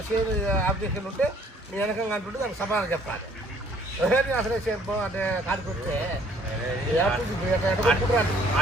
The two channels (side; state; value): both; normal; correlation 0.60